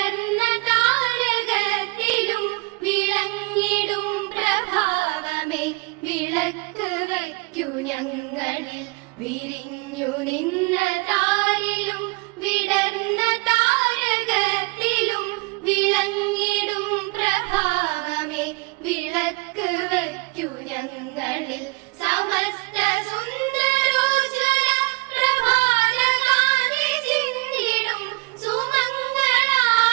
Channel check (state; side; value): quieter; left; 28.5 dB